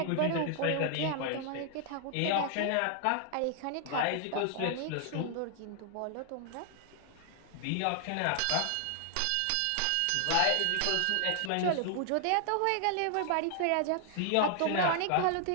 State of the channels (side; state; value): both; different; correlation 0.00